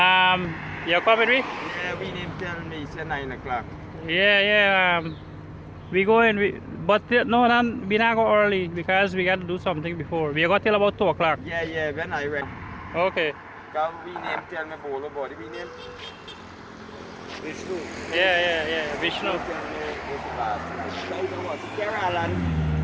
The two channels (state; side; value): identical; both; correlation 1.00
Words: You coming with me? Yeah, we didn't tell me it's 9 o'clock. Yeah. We go in, but no, we not go early because we got to do something before. We got till about 2 o'clock. Yeah, when I went. Okay. Because we name tell me bowl about it. We name Vishnu. Yeah. Vishnu. Tell me this last night. So you know what? Alan.